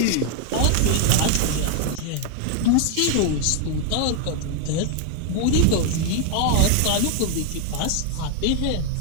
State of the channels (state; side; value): different; both; correlation 0.00